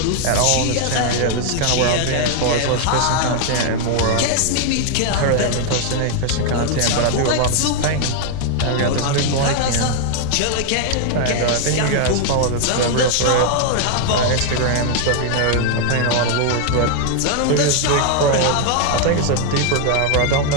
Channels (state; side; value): different; both; correlation 0.00